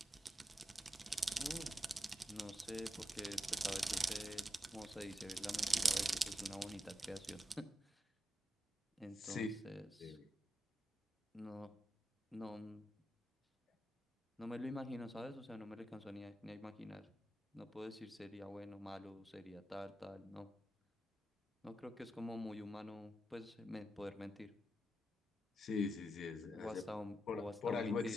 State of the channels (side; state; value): both; normal; correlation 0.87